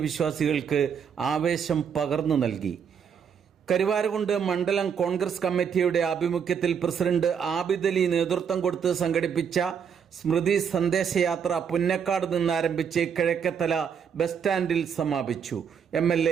വിശ്വാസികൾക്ക് ആവേശം പകർന്നു നൽകി. കരുവാരകുണ്ട് മണ്ഡലം കോൺഗ്രസ് കമ്മിറ്റിയുടെ ആഭിമുഖ്യത്തിൽ പ്രസിഡന്റ് ആബിദ് അലി നേതൃത്വം കൊടുത്ത് സംഘടിപ്പിച്ച സ്മൃതി സന്ദേശയാത്ര പുന്നക്കാട് നിന്ന് ആരംഭിച്ച് കിഴക്കേത്തല ബസ് സ്റ്റാൻഡിൽ സമാപിച്ചു.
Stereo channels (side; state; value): left; quieter; 7.3 dB